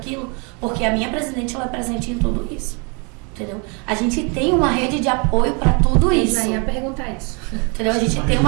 porque a minha presidente, ela é presente em tudo isso, entendeu? A gente tem uma rede de apoio para tudo isso. Já ia perguntar isso. Entendeu? A gente tem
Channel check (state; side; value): quieter; left; 33.4 dB